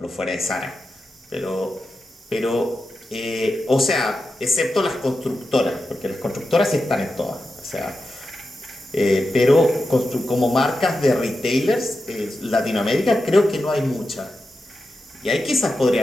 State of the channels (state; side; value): normal; both; correlation 0.90